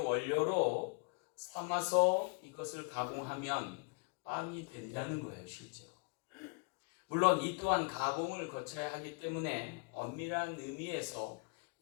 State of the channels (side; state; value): right; quieter; 35.1 dB